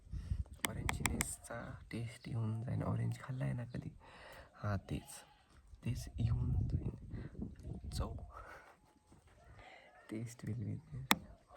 ऑरेंजनेसचा टेस्ट येऊन जाईल. ऑरेंज खाल्ला आहे ना कधी? हां, तेच येऊन जाईल. चव taste will be there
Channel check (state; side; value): identical; both; correlation 1.00